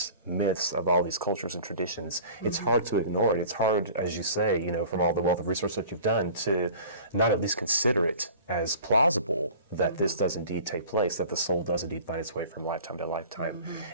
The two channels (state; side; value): inverted; both; correlation -0.43